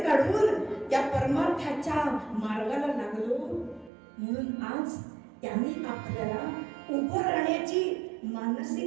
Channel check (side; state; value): left; drops out; at 3.9 s